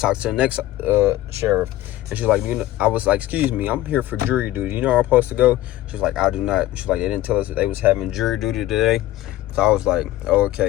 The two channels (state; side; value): quieter; right; 15.3 dB